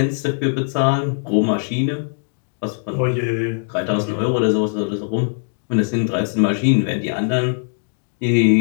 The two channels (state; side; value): silent; right; 66 dB below the other